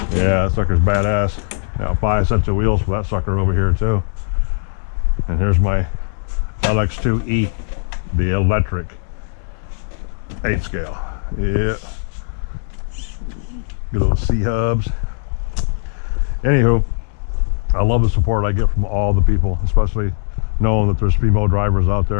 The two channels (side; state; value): right; silent; digital silence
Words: Yeah, that sucker's badass. Now 5 sets of wheels for that sucker over here too. And here's my LX2E, the electric 8 scale. Yeah, good little C hubs. Anywho, I love the support I get from all the people, especially knowing that there's female drivers out